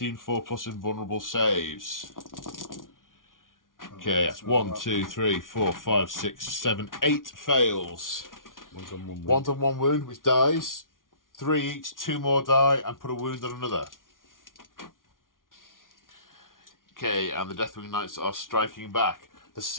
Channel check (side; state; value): right; late; 0.89 ms